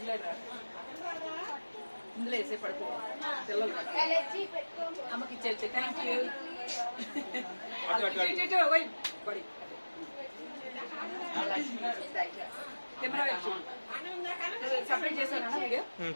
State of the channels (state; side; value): inverted; both; correlation -1.00